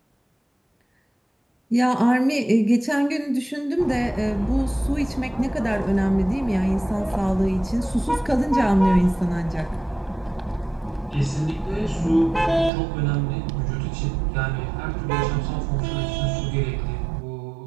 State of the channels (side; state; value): left; drops out; at 12.7 s